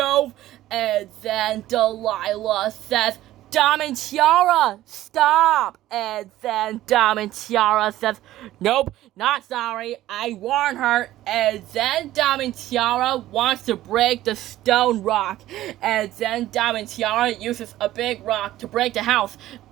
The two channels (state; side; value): quieter; left; 14.6 dB